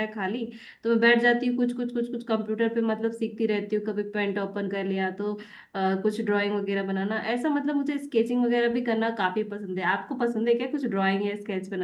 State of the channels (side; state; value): both; identical; correlation 1.00